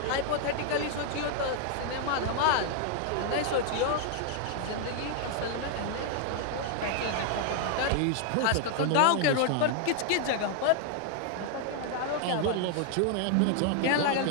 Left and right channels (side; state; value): both; different; correlation 0.00